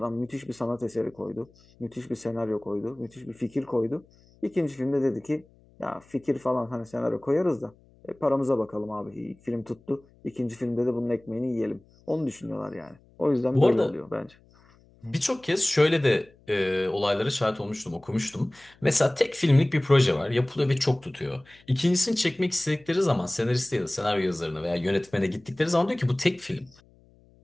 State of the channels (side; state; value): left; noise; hum, 29 dB below the sound